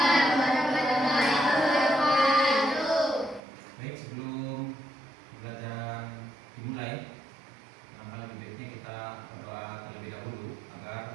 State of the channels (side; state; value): left; drops out; at 3.4 s